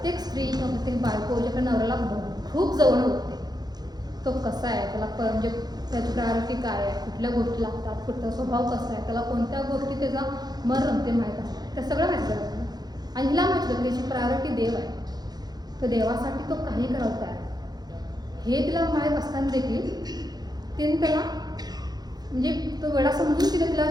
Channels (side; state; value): left; late; 0.19 ms